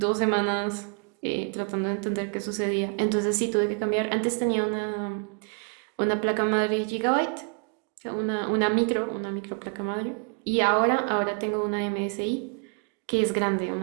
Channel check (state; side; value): quieter; left; 37.0 dB